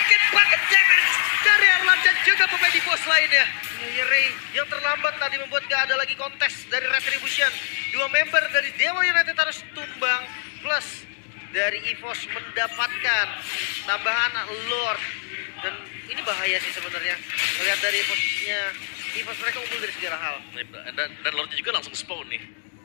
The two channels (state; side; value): silent; right; digital silence